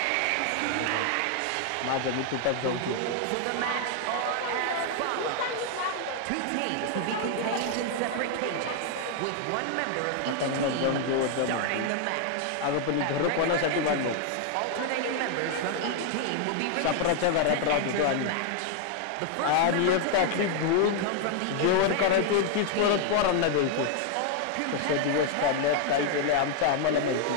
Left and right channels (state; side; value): different; both; correlation 0.00